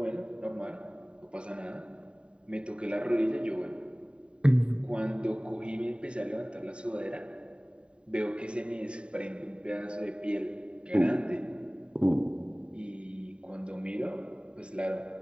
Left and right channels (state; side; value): late; left; 0.053 ms